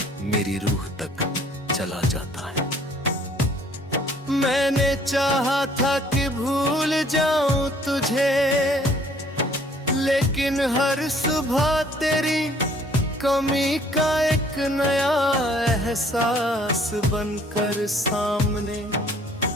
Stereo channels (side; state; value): both; normal; correlation 0.59